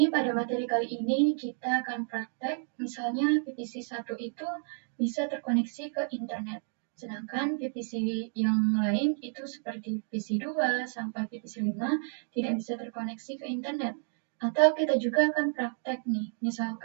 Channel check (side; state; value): left; silent; 57 dB below the other